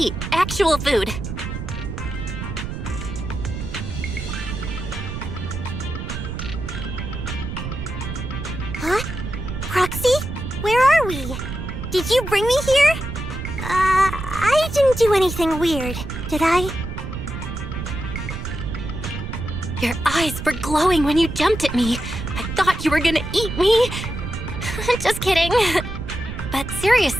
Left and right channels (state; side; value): noise; right; rumble, 6 dB below the sound